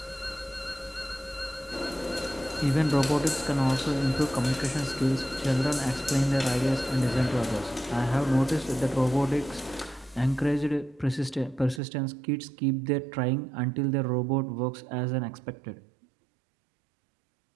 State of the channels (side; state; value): left; drops out; at 11.8 s